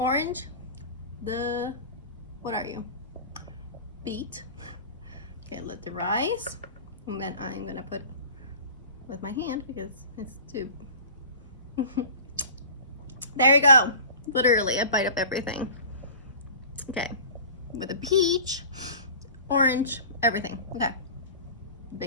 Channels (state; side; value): inverted; both; correlation -0.39